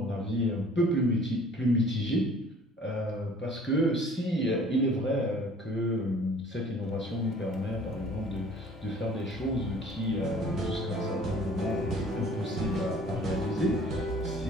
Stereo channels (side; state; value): both; normal; correlation 0.51